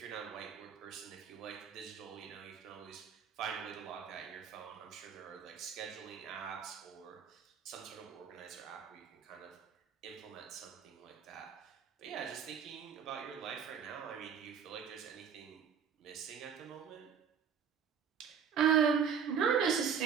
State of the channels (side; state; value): left; quieter; 7.2 dB